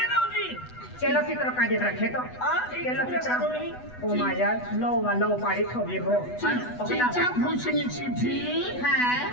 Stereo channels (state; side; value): late; right; 8.1 ms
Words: नव्हती चलो चित्र काढत रखे तो चलो चित्र ओ माझ्या लो पाडी ठोबी हो चिचा भूषणीची फी हां